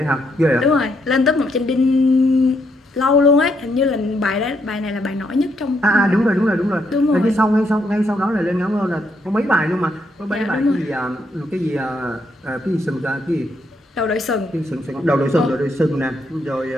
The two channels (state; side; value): normal; both; correlation 0.76